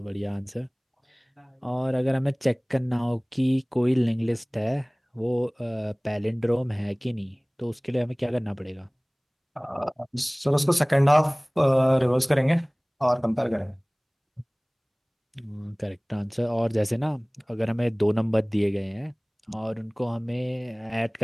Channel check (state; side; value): identical; both; correlation 1.00